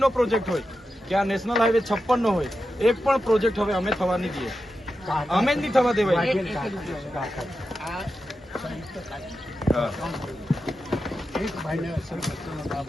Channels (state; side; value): normal; both; correlation 0.90